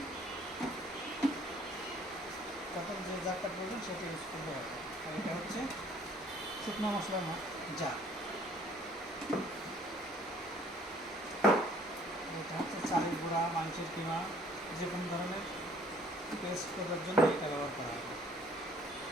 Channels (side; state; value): both; normal; correlation 0.58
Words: তখন যে জারটা প্রয়োজন সেটা ইউজ করতে হবে। আর এটা হচ্ছে শুকনো মশলার জার। এটা হচ্ছে চালের গুঁড়া, মাংসের কিমা, যে কোনো ধরনের পেস্ট করার জন্য এটা ব্যবহার করা হবে।